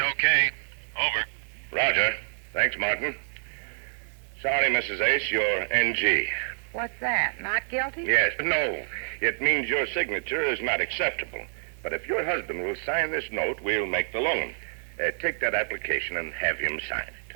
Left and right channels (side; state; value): left; silent; digital silence